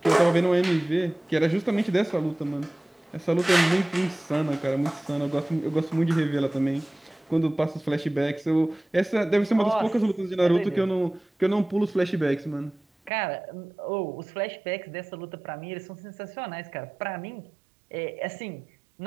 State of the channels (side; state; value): left; drops out; at 13.1 s